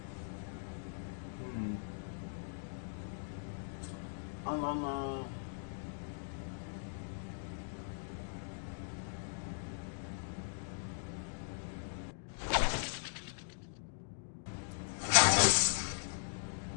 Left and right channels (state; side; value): silent; right; digital silence